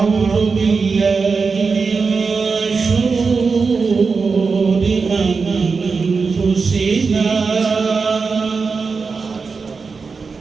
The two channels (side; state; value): left; quieter; 4.8 dB